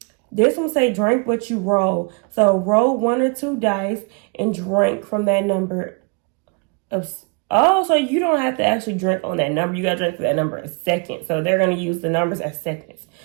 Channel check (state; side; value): quieter; left; 33.9 dB